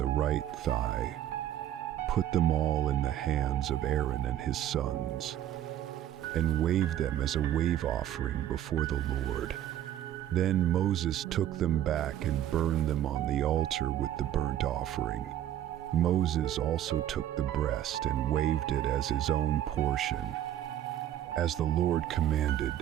right thigh, put them all in the hands of Aaron and his sons, and waved them as a wave offering before the Lord. Then Moses took them back and burned them on the altar with the burnt offering. Moses also took the breast and waved it as his own portion, as the Lord commanded.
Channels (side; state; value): left; quieter; 11.6 dB